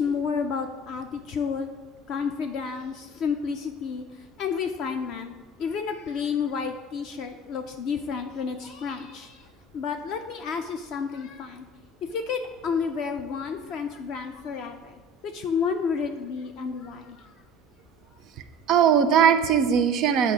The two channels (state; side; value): normal; both; correlation 0.40